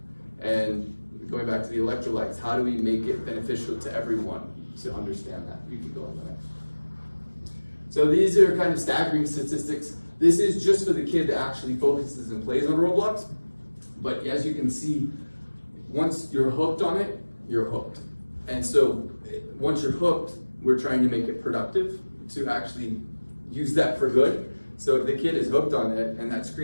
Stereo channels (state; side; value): inverted; both; correlation -1.00